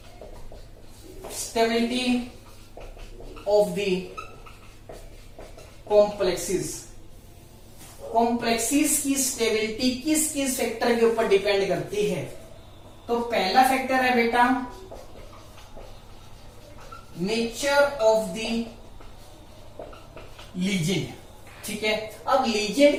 stability of the complexes। Complexes की स्टेबिलिटी किस किस फैक्टर के ऊपर डिपेंड करती है? तो पहला फैक्टर है बेटा नेचर ऑफ द लीजेंड। ठीक है, अब लीजेंड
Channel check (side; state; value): both; identical; correlation 1.00